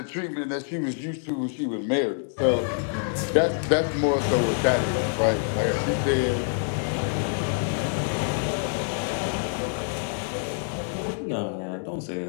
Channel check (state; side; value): silent; right; 61 dB below the other